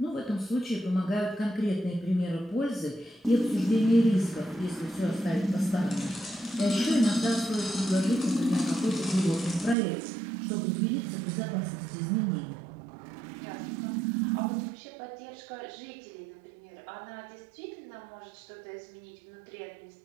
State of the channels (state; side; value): drops out; left; at 9.8 s